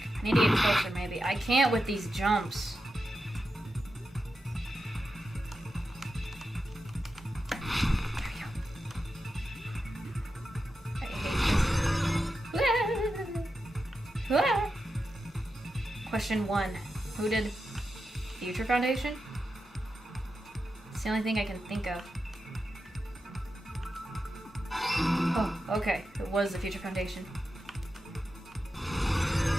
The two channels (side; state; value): both; normal; correlation 0.89